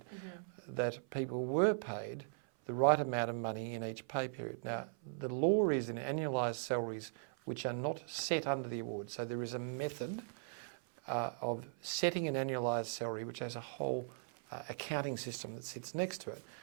that people were paid the right amount of money in each pay period. Now, the law is in annualised salaries which are not set under the award. So there is a method of setting an annualised salary which has a whole accounting system that sits next to it,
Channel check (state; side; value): silent; left; 52 dB below the other